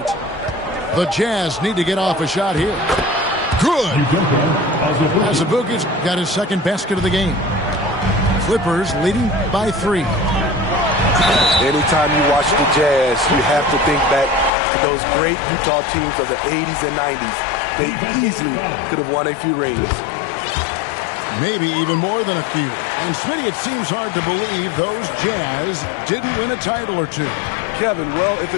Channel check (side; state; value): right; drops out; at 14.5 s